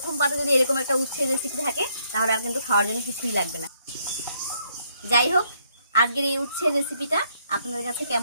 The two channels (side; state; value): both; inverted; correlation -0.72